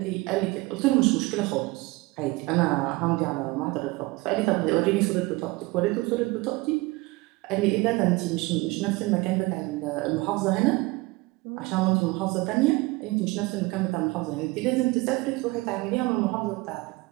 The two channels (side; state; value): left; quieter; 22.6 dB